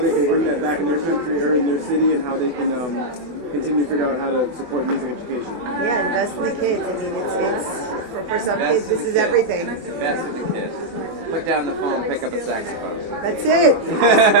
can bring that back in their country or in their city, and how they can continue to figure out how to support music education. Yeah, invest in the kids. I mean, it's for some kids, this is everything. Invest in the kids. Put down the phone, pick up a saxophone. That's it.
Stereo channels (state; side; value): late; left; 24 ms